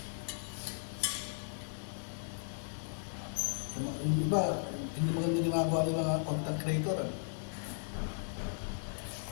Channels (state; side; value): silent; right; digital silence